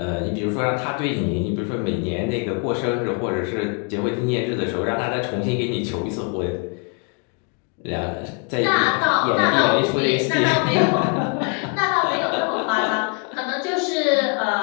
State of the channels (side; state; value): right; quieter; 38.4 dB